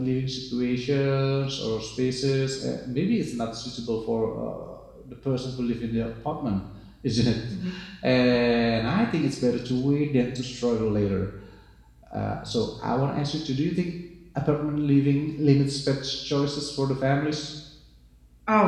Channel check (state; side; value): identical; both; correlation 1.00